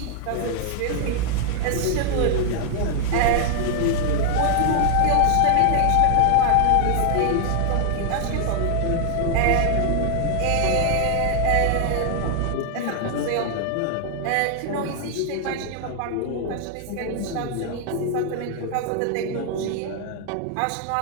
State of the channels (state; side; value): different; both; correlation 0.00